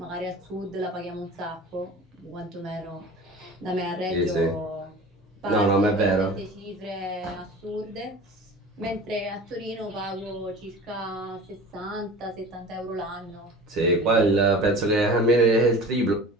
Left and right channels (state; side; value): normal; both; correlation 0.39